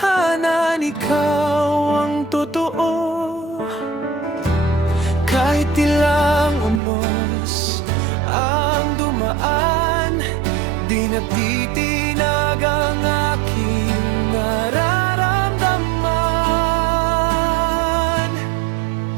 ikaw ang totoo. Kahit ilang unos ang dumaan, di natitinag ang aking nararamdaman.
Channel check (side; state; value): left; drops out; at 6.8 s